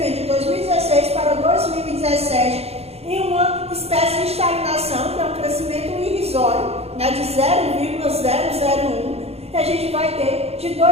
de 2016 para 2017, em uma espécie de estagnação, que é um crescimento irrisório, né, de 0,001, que a gente vai ter de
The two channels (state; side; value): late; left; 0.30 ms